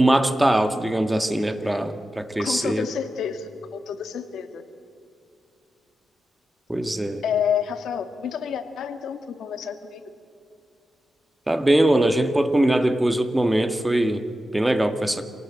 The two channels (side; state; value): both; normal; correlation 0.91